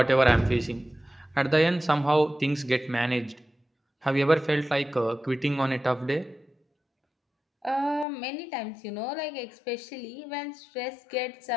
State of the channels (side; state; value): right; drops out; at 8.1 s